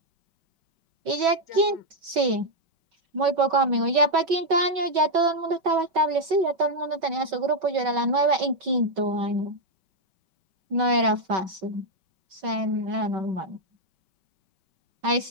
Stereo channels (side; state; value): left; late; 5.3 ms